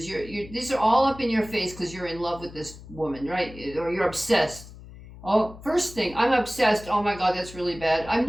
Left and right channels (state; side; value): noise; left; hum, 17 dB below the sound